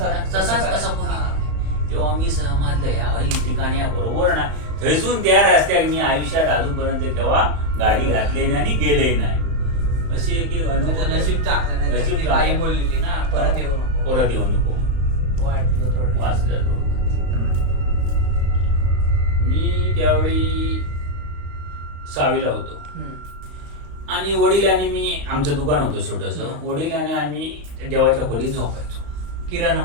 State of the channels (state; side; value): late; left; 35 ms